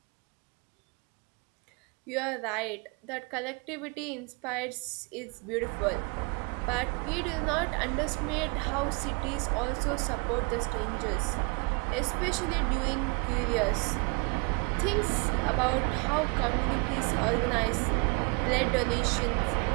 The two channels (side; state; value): left; quieter; 32.5 dB